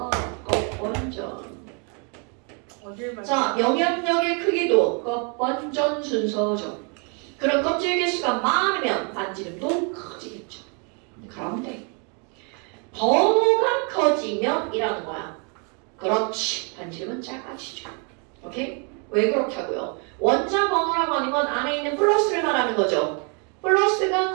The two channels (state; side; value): quieter; left; 36.6 dB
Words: 껍번전. 어딜 봐. 자, 영향력의 크기도 껍번전 순서죠. 그럼 껍질 개수가 많으면 반지름도 커지겠죠. 그런데 번호가 커지면 이라는 거야. 그렇지. 반지름은 작아지죠. 오케이? 왜 그렇게 하고요? 원자 번호라고 하는 건 안에 있는 플러스를 말하는 거죠. 플러스가